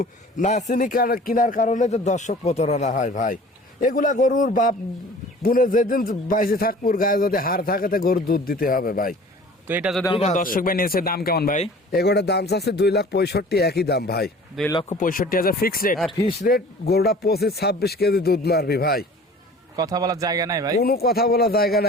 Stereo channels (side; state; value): both; normal; correlation 0.45